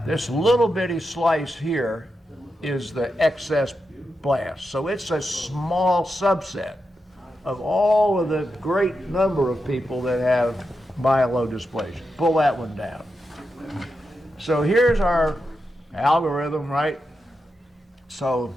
This little bitty slice here is the excess blast. So it's a small subset of all of the great number of people that have myelodysplasia. Pull that one down. So here's our algorithm, right? So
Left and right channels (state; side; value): normal; both; correlation 0.87